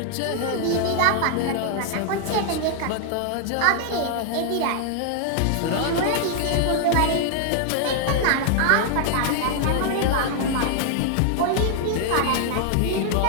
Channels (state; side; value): different; both; correlation 0.00